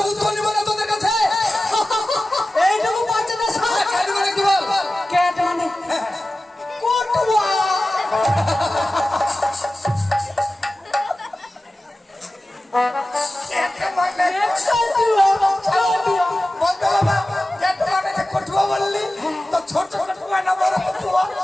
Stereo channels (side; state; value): both; normal; correlation 0.95